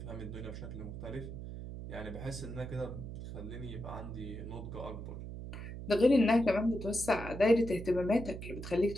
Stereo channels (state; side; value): noise; right; hum, 8 dB below the sound